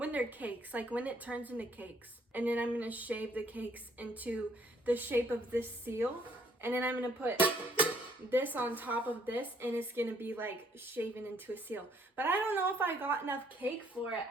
they're cakes, like when it turns into cakes. And then I'm gonna shape the cakes into the shape of this seal. And then I'm gonna put this on top of this, and it's gonna be like shaven into a seal. But I don't know if I got enough cake for it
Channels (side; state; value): both; normal; correlation 0.65